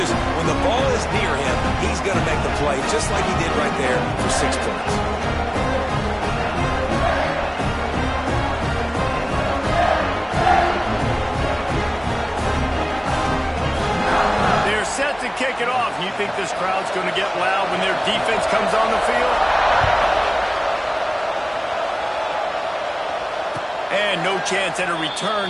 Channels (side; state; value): both; identical; correlation 1.00